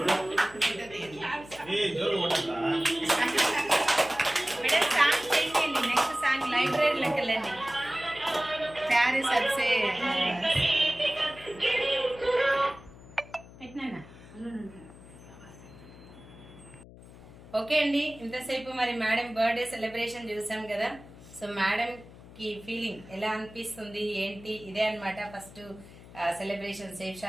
మేడం సాంగ్ చేయండి, నెక్స్ట్ సాంగ్ లైబ్రరీలోకి వెళ్ళండి. ప్యారిస్ అర్సే పెట్టినా. ఓకే అండి, ఇంతసేపు మరి మేడం బర్త్డే సెలబ్రేషన్ చూసాం కదా. సో మేడం కి ఫీలింగ్ ఎలా అనిపిస్తుంది ఏంటి, ఇదే అన్నమాట first celebration safe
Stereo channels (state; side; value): noise; left; hum, 19 dB below the sound